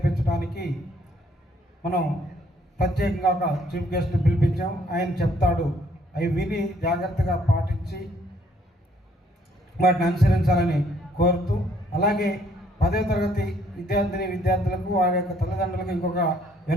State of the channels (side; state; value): both; normal; correlation 0.65